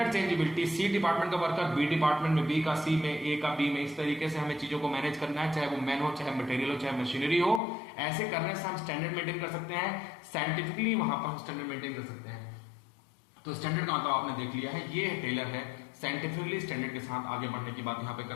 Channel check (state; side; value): drops out; right; at 7.6 s